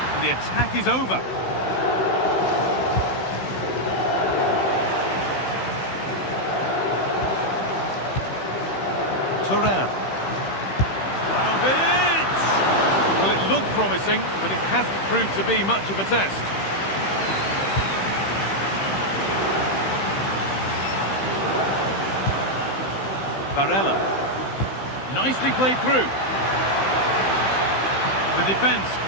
And the attack is over. Turan. Well, it looked promising, but it hasn't proved to be much of a test. Barella. Nicely played through. The defence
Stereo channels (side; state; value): right; late; 15 ms